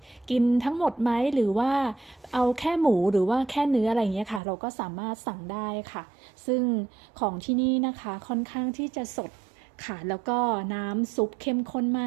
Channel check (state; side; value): drops out; left; at 4.4 s